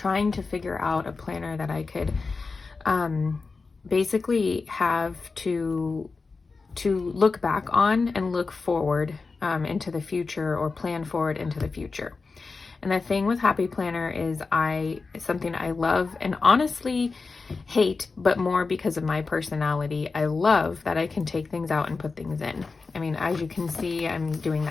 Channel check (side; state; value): right; quieter; 4.2 dB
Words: to figure out a planner that I could basically have to look back on and look forward into the future, or plan forward into the future. And the thing with Happy Planner is something I love and honestly hate, but more because of my personality. I love that I can take things out and put things in. I mean, as you can see, I'm doing